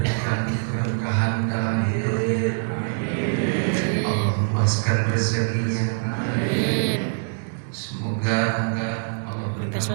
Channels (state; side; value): silent; left; digital silence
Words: keberkahan dalam hidupnya. Allah luaskan rezekinya. Semoga Allah berikan